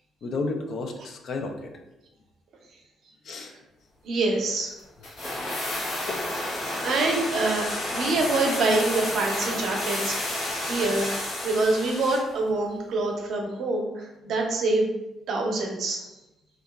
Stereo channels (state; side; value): normal; both; correlation 0.72